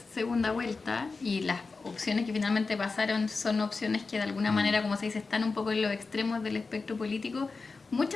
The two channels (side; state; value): right; quieter; 4.2 dB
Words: segunda vuelta y las opciones que finalmente pasaron son opciones que de alguna manera, como se dice, están un poco en los extremos del espectro político,